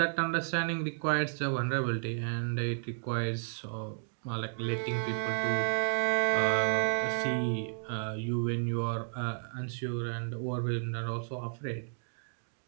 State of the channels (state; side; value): silent; left; 56 dB below the other